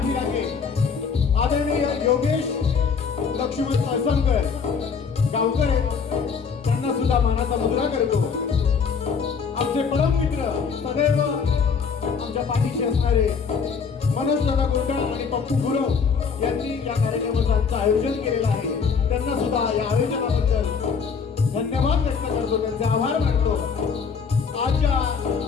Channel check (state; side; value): quieter; right; 5.9 dB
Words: पाठीराखे आदरणीय योगेश लक्ष्मण कळसमकर गावकर आहेत. त्यांना सुद्धा मानाचा मुद्रा करतो. आमचे परम मित्र सदैव आमच्या पाठीशी असणारे मनोज दादा गोंडल आणि पप्पू गुरव यांनी या कार्यक्रमाचं आयोजन केलेलं आहे. त्यांना सुद्धा या आयोजनाबद्दल धन्यवाद व्यक्त करतो, त्यांचे आभार मानतो. आजच्या